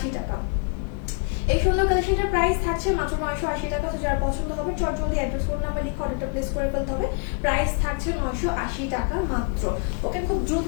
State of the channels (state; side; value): quieter; right; 32.4 dB